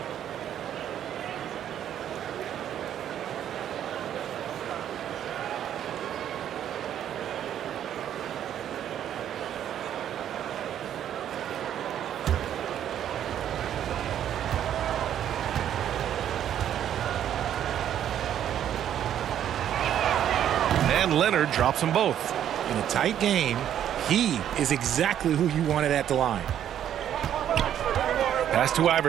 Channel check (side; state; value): left; quieter; 10.3 dB